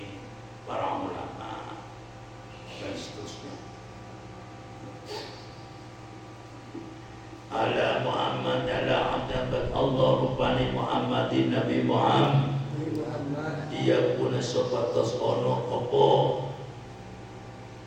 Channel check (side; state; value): both; identical; correlation 1.00